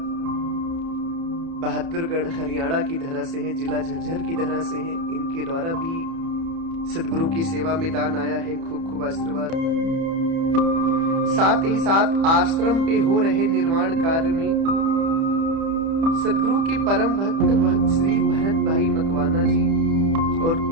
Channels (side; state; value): left; late; 30 ms